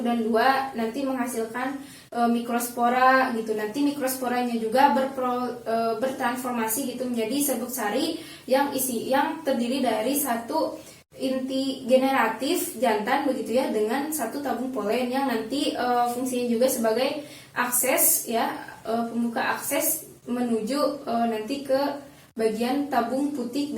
dan 2, nanti menghasilkan mikrospora gitu. Nanti mikrosporanya juga bertransformasi gitu menjadi serbuk sari yang terdiri dari 1 inti generatif jantan begitu ya, dengan 1 tabung polen yang nanti fungsinya juga sebagai akses ya, pembuka akses menuju nanti ke bagian tabung putik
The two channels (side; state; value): both; identical; correlation 1.00